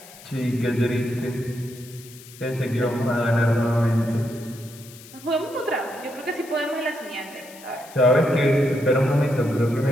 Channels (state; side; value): noise; left; hiss, 19 dB below the sound